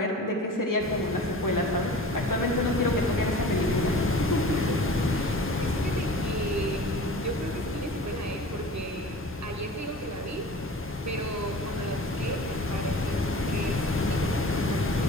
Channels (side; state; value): both; normal; correlation 0.39